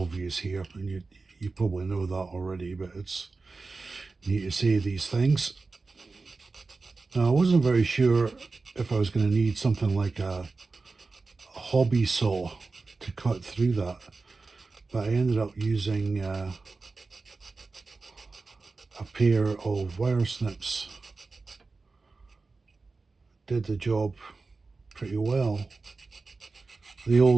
here, and you probably know that already, but it's neat to say these things. Now, I wasn't very sure if I was going to need something like a hobby saw to cut through that, but I ended up using a pair of wire snips. Did the job pretty well. The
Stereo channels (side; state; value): left; quieter; 3.9 dB